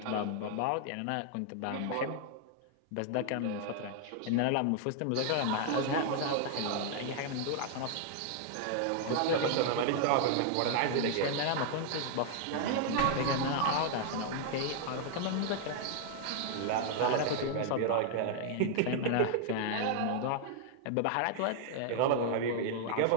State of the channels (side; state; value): both; different; correlation 0.00